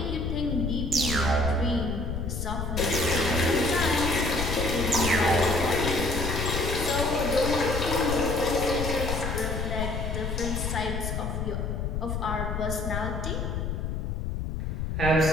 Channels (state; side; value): noise; left; rumble, 2 dB below the sound